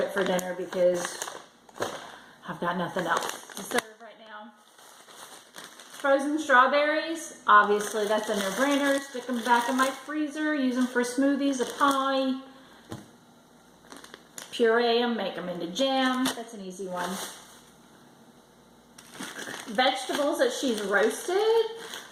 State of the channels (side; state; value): both; identical; correlation 1.00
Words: for dinner because I've got nothing else to serve right now. Frozen strawberries, obviously that's a no-brainer. Stick them back in my freezer, use them for smoothies, a pie. Puree them, make them into jam. That's an easy one. Vegetables that she's roasted.